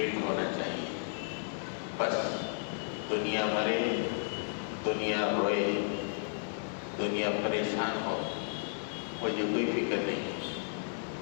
ہونا چاہیے، بس دنیا مرے، دنیا روئے، دنیا پریشان ہو، مجھے کوئی فکر نہیں ہے،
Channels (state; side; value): silent; right; digital silence